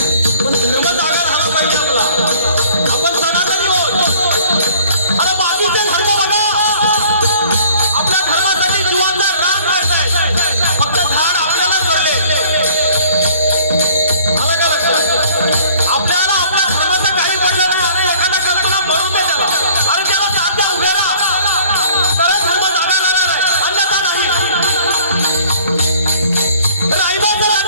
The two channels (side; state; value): both; inverted; correlation -0.52